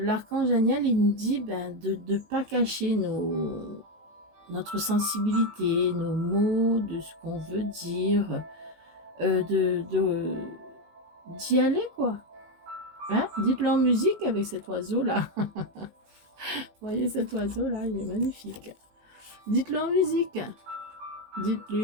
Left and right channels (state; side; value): late; left; 18 ms